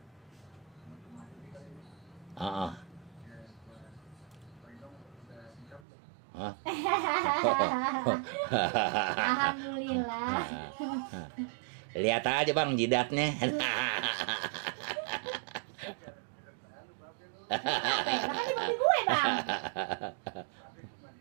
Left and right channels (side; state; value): left; drops out; at 5.8 s